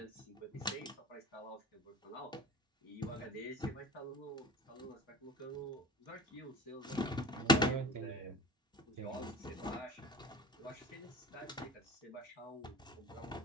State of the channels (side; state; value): both; normal; correlation 0.36